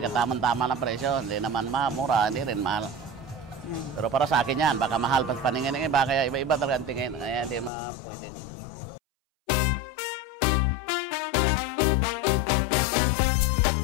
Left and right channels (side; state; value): right; drops out; at 7.7 s